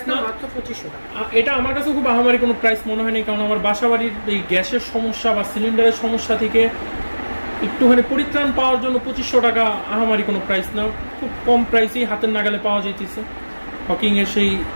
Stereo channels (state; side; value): inverted; both; correlation -1.00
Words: না, মাত্র 2500 টাকা। এটা আমার কাছে খুব আহামারি কোনো প্রাইস মনে হয়নি, কারণ আমার বাসাবাড়ির এই গ্যাসের সমস্যা বা সিলিন্ডারের সমস্যা থেকে একটুখানি পরিত্রাণ পাওয়ার জন্য 2500 টাকা আহামারি কোনো প্রাইস না, খুব কম প্রাইসেই হাতের নাগালে পাওয়া যাইতেছে হকিংয়ের সেই